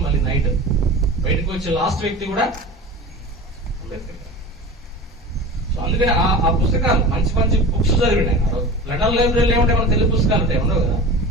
మళ్ళీ నైట్ బయటకు వచ్చే లాస్ట్ వ్యక్తి కూడా అంబేద్కర్. సో అందుకని ఆ పుస్తకాలు మంచి మంచి బుక్స్ చదివిండి ఆయన. లండన్ లైబ్రరీలో ఏమంటే మన తెలుగు పుస్తకాలు ఉంటాయి, ఉండవు కదా.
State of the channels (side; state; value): both; normal; correlation 0.34